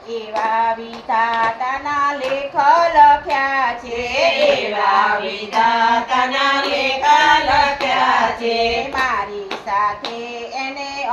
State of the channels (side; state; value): both; identical; correlation 1.00